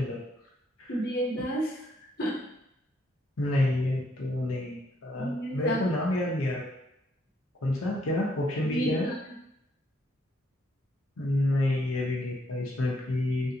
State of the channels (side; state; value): both; normal; correlation 0.73